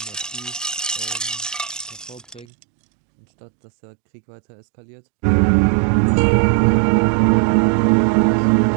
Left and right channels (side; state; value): left; drops out; at 2.5 s